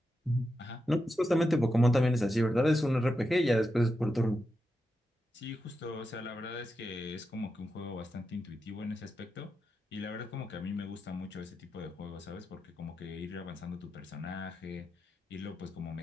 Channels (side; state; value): both; normal; correlation 0.87